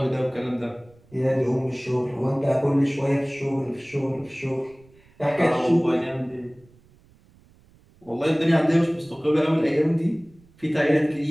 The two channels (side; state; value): right; noise; rumble, 29 dB below the sound